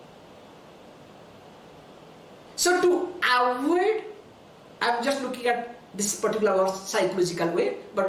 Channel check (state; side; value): identical; both; correlation 1.00